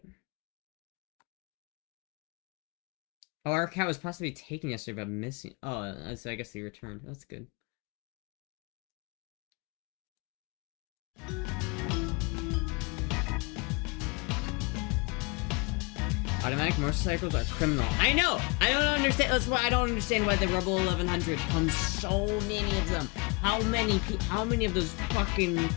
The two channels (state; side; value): quieter; right; 29.5 dB